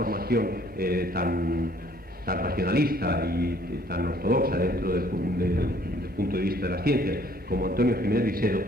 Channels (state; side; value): normal; both; correlation 0.60